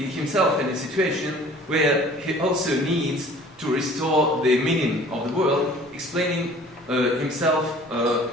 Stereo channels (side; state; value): both; normal; correlation 0.49